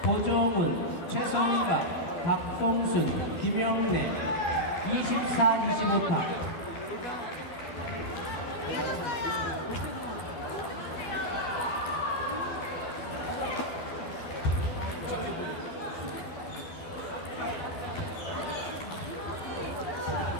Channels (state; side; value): late; right; 12 ms